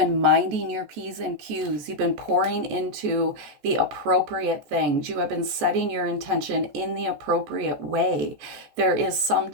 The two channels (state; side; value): late; left; 14 ms